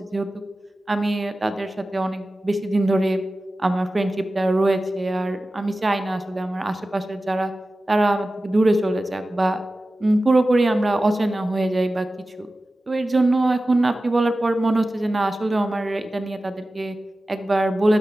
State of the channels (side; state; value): both; normal; correlation 0.95